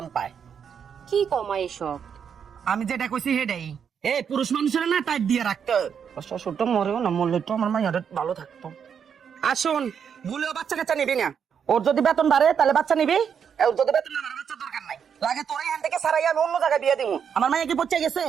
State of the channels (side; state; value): left; quieter; 7.5 dB